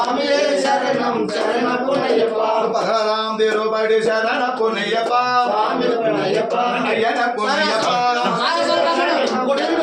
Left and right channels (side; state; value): both; identical; correlation 1.00